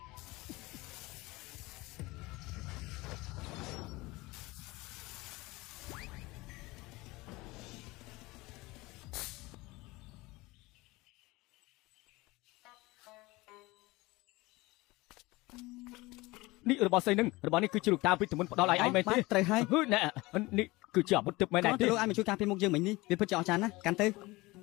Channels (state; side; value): quieter; right; 21.7 dB